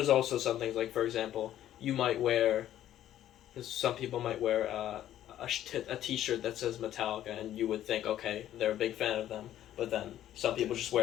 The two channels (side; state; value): right; quieter; 12.2 dB